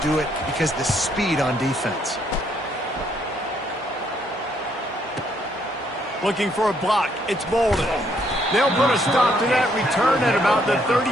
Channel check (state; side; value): normal; both; correlation 0.70